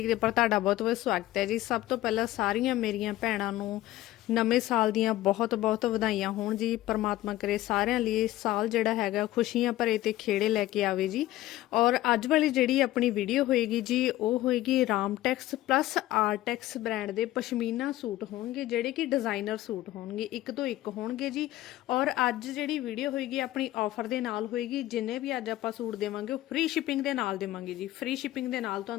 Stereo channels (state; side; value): quieter; right; 15.5 dB